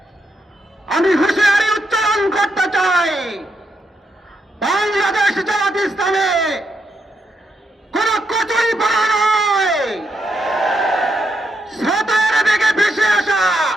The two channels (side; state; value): both; normal; correlation 0.80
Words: আমি হুঁশিয়ারি উচ্চারণ করতে চাই, বাংলাদেশ জামাত ইসলামে কোন কচুরি পাড়া নয়, স্রোতের বেগে ভেসে আসা